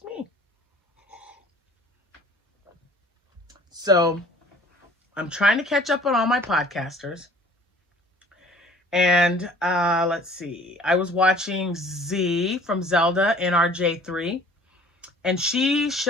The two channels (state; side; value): normal; both; correlation 0.51